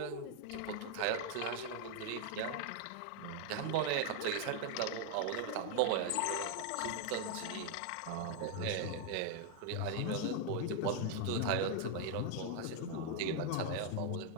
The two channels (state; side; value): different; both; correlation 0.00